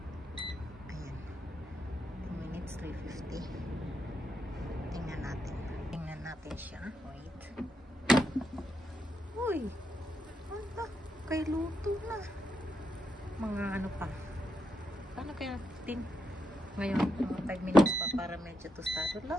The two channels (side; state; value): both; normal; correlation 0.81